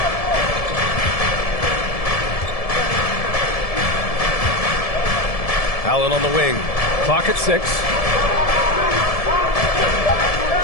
Allen on the wing. Clock at 6.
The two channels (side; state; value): right; late; 1.7 ms